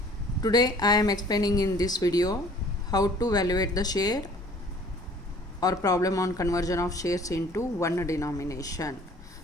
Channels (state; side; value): normal; both; correlation 0.52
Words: Today I am explaining in this video how to evaluate the share or problem on conversion of shares into one denomination.